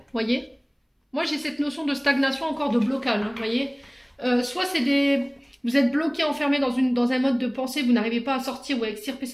voyez. Moi j'ai cette notion de stagnation encore, de blocage, hein, voyez. Soit c'est vous êtes bloqué, enfermé dans un mode de pensée, vous n'arrivez pas à sortir ou à extirper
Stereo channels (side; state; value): both; identical; correlation 1.00